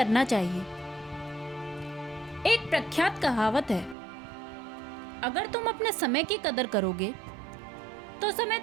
चाहिए। एक प्रख्यात कहावत है, अगर तुम अपने समय की कदर करोगे तो समय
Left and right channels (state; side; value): drops out; left; at 4.0 s